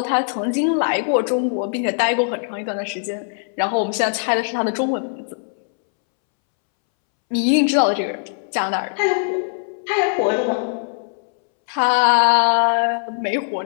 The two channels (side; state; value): right; silent; 65 dB below the other